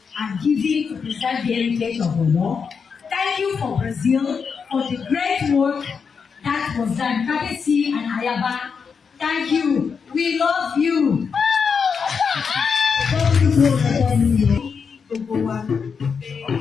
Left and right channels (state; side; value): quieter; right; 5.9 dB